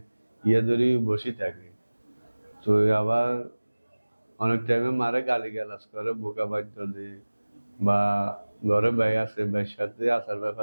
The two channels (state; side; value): inverted; both; correlation -1.00